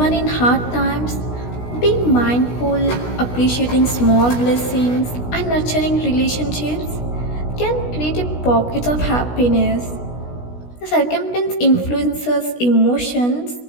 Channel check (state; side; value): late; right; 16 ms